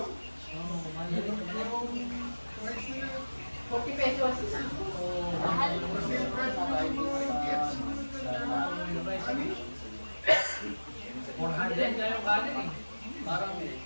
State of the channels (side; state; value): both; inverted; correlation -1.00